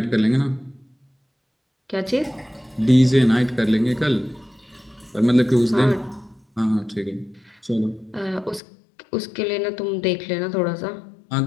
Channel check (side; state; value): right; drops out; at 8.6 s